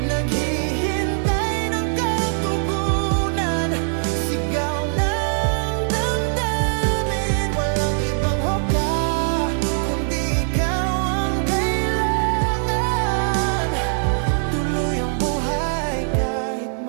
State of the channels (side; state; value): left; silent; digital silence